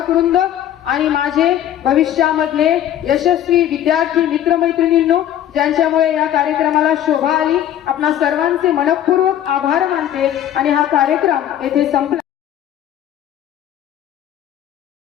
वृंद आणि माझे भविष्यामधले यशस्वी विद्यार्थी मित्रमैत्रिणींनो, ज्यांच्यामुळे या कार्यक्रमाला शोभा आली. आपणा सर्वांचे मनपूर्वक आभार मानते आणि हा कार्यक्रम येथे संपला.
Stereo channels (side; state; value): right; quieter; 11.2 dB